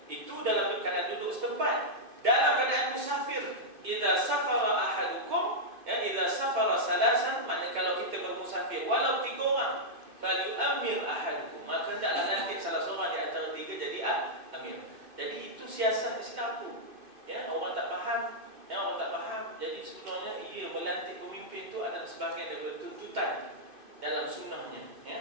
itu dalam keadaan duduk setempat. Dalam keadaan musafir, idza safara ahadukum, ya, idza safara salasan, maknanya kalau kita bermusafir walau 3 orang, falyu'ammir ahadukum, maka hendaklah lantik salah seorang di antara 3 jadi amir. Jadi itu siasat Islam tu. Ya, orang tak faham, ya, orang tak faham. Jadi sebenarnya ia melantik pemimpin tu adalah sebahagian daripada tuntutan dalam sunnahnya,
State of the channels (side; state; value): left; late; 2.5 ms